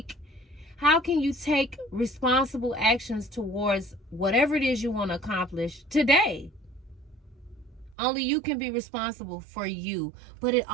take responsible actions towards whatever it is you want to accomplish today? Only you can be responsible for you. But it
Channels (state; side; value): drops out; left; at 8.0 s